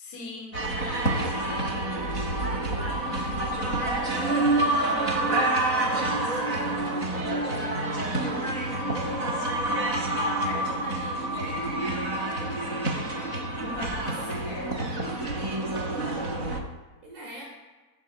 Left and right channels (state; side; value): late; right; 4.0 ms